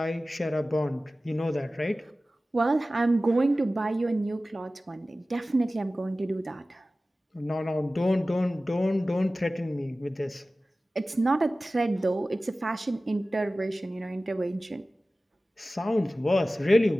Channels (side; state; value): both; normal; correlation 0.96